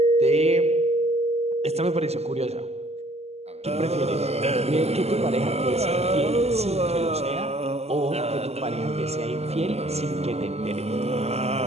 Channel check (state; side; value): late; left; 0.30 ms